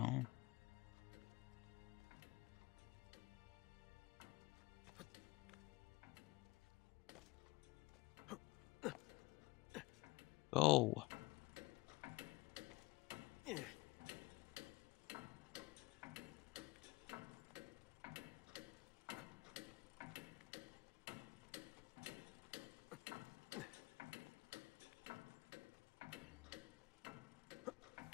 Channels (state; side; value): quieter; right; 23.1 dB